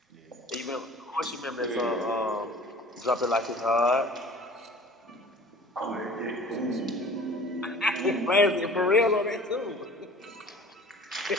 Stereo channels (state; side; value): normal; both; correlation 0.45